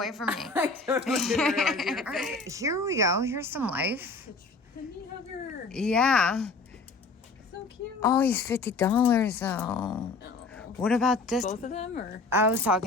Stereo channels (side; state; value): right; quieter; 3.7 dB